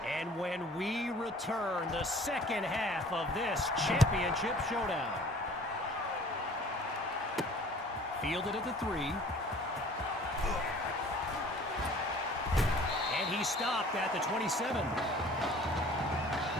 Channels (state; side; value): normal; both; correlation 0.50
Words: And when we return, the second half of this championship showdown. Fielded at the 3. And he stopped at the 27.